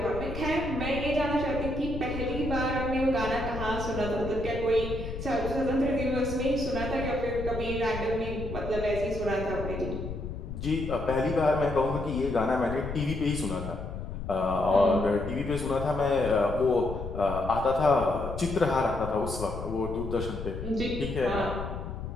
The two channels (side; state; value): left; noise; rumble, 7 dB below the sound